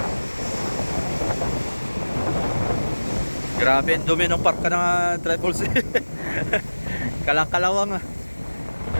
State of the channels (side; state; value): both; inverted; correlation -1.00